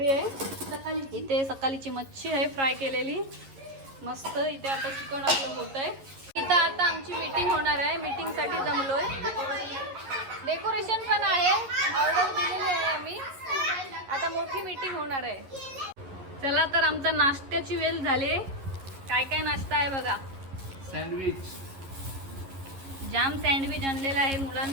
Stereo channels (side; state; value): left; late; 11 ms